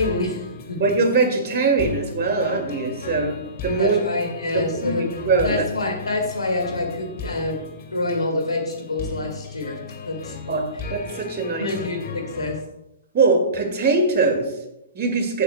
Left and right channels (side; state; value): both; inverted; correlation -0.37